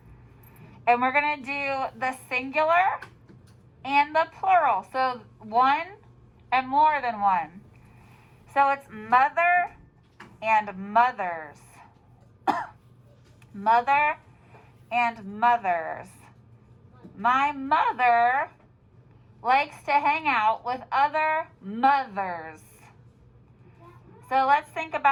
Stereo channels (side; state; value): both; identical; correlation 1.00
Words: And we're going to do the singular and the plural. So one and more than one. So it's mother and mothers. Mother and mothers. My mother likes to hang out with other mothers. So let's think